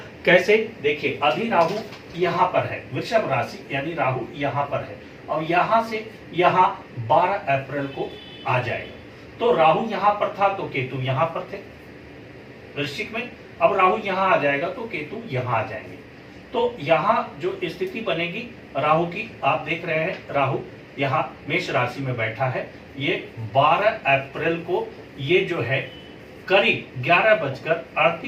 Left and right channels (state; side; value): identical; both; correlation 1.00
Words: कैसे। देखिए, अभी राहु यहाँ पर है, वृषभ राशि यानी राहु यहाँ पर है और यहाँ से यहाँ 12 अप्रैल को आ जाएगा। तो राहु यहाँ पर था तो केतु यहाँ पर थे वृश्चिक में, अब राहु यहाँ आ जाएगा तो केतु यहाँ आ जाएंगे। तो यहाँ जो स्थिति बनेगी राहु की, आप देख रहे हैं राहु यहाँ मेष राशि में बैठा है। ये 12 अप्रैल को ये जो है करीब